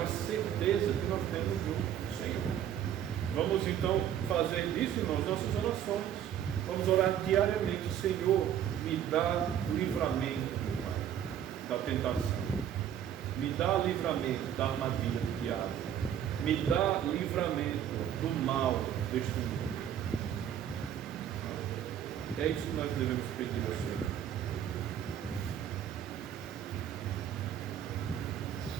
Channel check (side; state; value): left; quieter; 10.0 dB